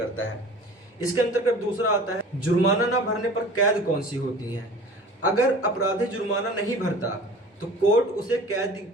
है। इसके अंतर्गत दूसरा आता है, जुर्माना ना भरने पर कैद कौन सी होती है। अगर अपराधी जुर्माना नहीं भरता तो कोर्ट उसे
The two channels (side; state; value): both; normal; correlation 0.42